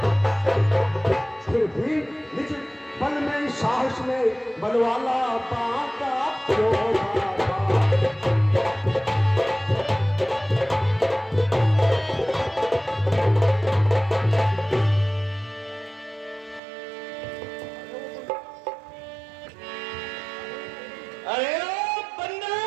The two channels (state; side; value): drops out; left; at 16.6 s